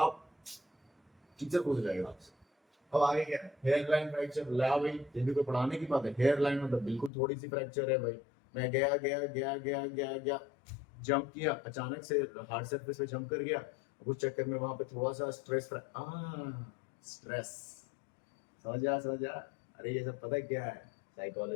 टीचर पूछ जाएगा आपसे, अब आगे क्या, हेयर लाइन फ्रैक्चर। ला भाई, ये भी कोई पढ़ाने की बात है? हेयर लाइन मतलब बिल्कुल थोड़ी सी फ्रैक्चर है भाई। मैं गया गया गया गया गया गया, जंप किया, अचानक से हार्ड सरफेस पे जंप कर गया, उस चक्कर में वहां पे थोड़ा सा स्ट्रेस। समझ जा। अरे ये सब पता है क्या है?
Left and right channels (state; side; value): drops out; right; at 7.1 s